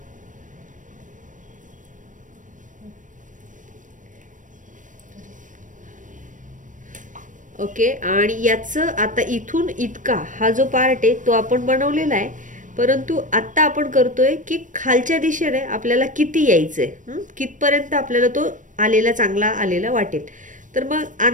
ओके, आणि याचं आता इथून इतका हा जो पार्ट आहे तो आपण बनवलेला आहे, परंतु आता आपण करतोय की खालच्या दिशेने आपल्याला किती यायचंय, कितपर्यंत आपल्याला तो आलेला चांगला आलेला वाटेल। तर मग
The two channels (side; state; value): left; late; 0.37 ms